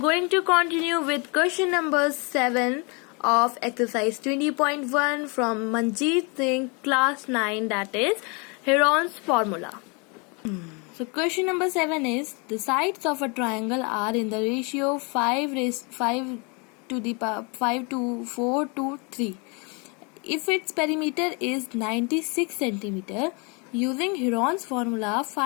to continue with question number 7 of exercise 20.1 from Manjeet Singh class 9, that is Heron's formula. So question number 7 is the sides of a triangle are in the ratio 5 to 4 to 3. If its perimeter is 96 centimeter, using Heron's formula,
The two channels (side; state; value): right; quieter; 31.9 dB